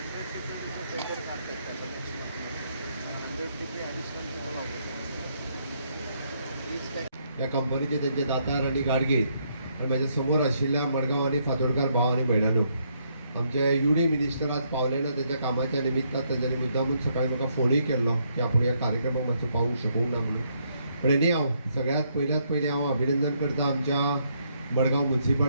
TPT टेंडर काढतात त्याचं नेक्स्ट 100 TPT ॲडिशनल तिथं लावलं. ह्या कंपनीचे त्यांचे दातार आणि गाडगे आणि म्हाज्या समोर आशिल्ल्या मडगांव आणि फातोडकार भाव आणि भयणानो, आमचे UD मिनिस्टर आज पावले ना, त्यांच्या कामाच्या निमित्तान तांच्यांनी मुद्दामून सकाळी म्हाका फोनूय केल्लो की आपूण ह्या कार्यक्रमाक मातसो पावूंक शकूंक ना म्हणून. पण एनी हांव सगळ्यात पयलीं हांव अभिनंदन करता आमच्या मडगांव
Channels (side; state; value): both; inverted; correlation -0.73